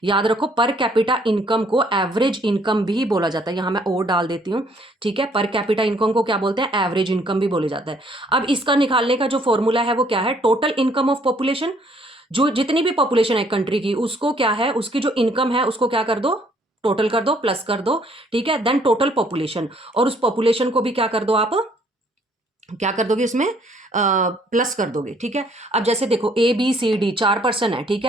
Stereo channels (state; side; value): normal; both; correlation 0.64